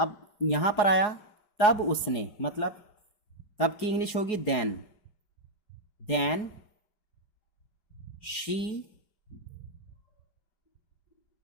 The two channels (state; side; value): late; right; 4.8 ms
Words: यहां पर आया तब उसने, मतलब तब की इंग्लिश होगी then. Then she